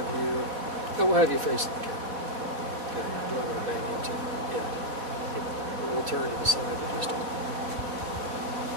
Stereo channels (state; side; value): late; left; 4.1 ms